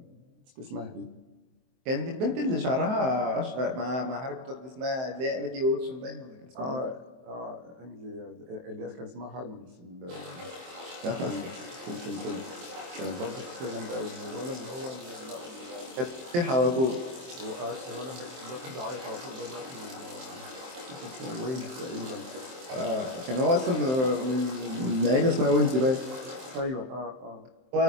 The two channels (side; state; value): left; late; 23 ms